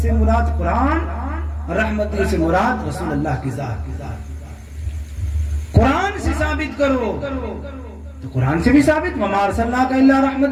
سے مراد قرآن، رحمتی سے مراد رسول اللہ کی ذات۔ قرآن سے ثابت کرو تو قرآن سے بھی ثابت وَمَا أَرْسَلْنَاكَ إِلَّا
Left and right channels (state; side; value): identical; both; correlation 1.00